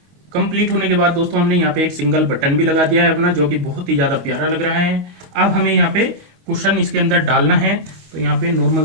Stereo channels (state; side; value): late; left; 25 ms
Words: कंप्लीट होने के बाद दोस्तों हमने यहाँ पे एक सिंगल बटन भी लगा दिया है अपना, जो कि बहुत ही ज्यादा प्यारा लग रहा है। अब हमें यहाँ पे कुशन इसके अंदर डालना है, तो यहाँ पे नॉर्मल